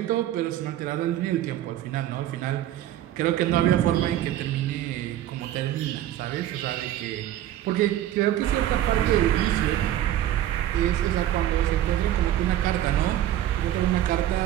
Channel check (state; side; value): quieter; left; 12.6 dB